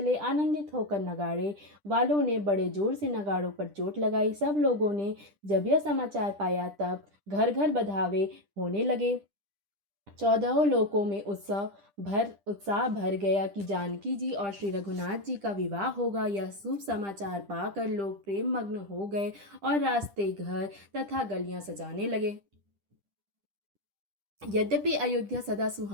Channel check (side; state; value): left; late; 10 ms